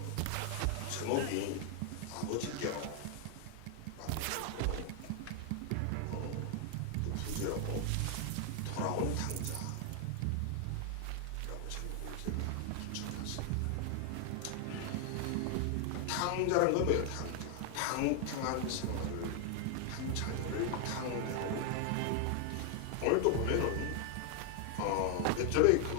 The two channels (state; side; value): different; both; correlation 0.00